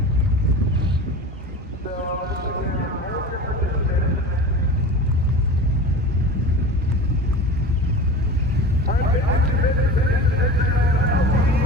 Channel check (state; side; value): normal; both; correlation 0.34